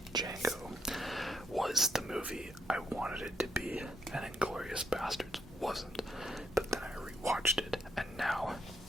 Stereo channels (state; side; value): normal; both; correlation 0.78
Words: Django was the movie I wanted it to be, and Inglourious Basterds wasn't. But then I rewatched it, and now